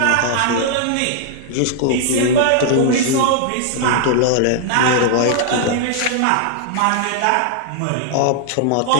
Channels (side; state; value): both; different; correlation -0.01